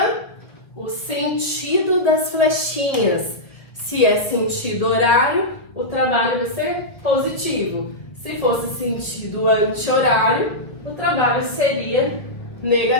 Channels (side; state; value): right; late; 1.5 ms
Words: o sentido das flechinhas. Se é sentido horário, o trabalho vai ser positivo. Se fosse sentido anti-horário, o trabalho seria